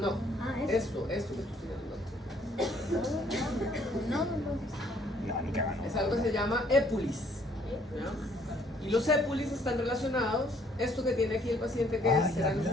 Ah, esto que estoy estudiando. No, ni cagando. Es algo que se llama épulis, ¿ya? Y los épulis están relacionados, esto que tiene aquí el paciente, que Ay, serán los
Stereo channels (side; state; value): both; normal; correlation 0.63